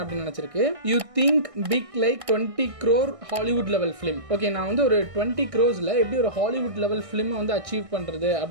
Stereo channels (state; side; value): late; left; 1.6 ms